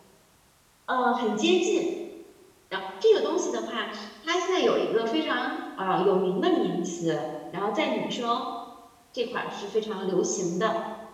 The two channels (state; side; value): identical; both; correlation 1.00